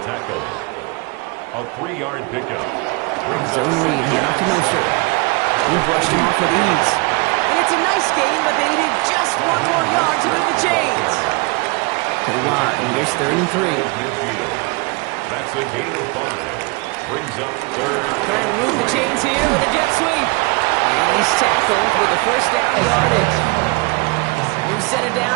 tackle. A 3-yard pickup. Zone read here out to Mostert. He brushed him off with ease. And it's a nice game, but they needed just 1 more yard to move the chains. To the line. Here's third and 3. That's a gain of 5. Brings up third. Trying to move the chains here with a jet sweep. And he's tackled with a first down yardage. New set of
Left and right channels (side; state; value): left; quieter; 27.9 dB